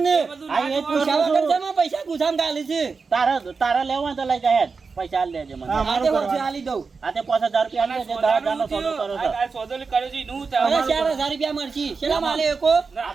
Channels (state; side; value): quieter; left; 4.8 dB